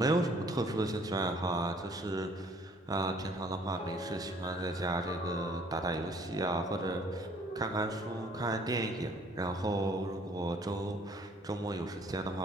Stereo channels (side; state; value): both; normal; correlation 0.58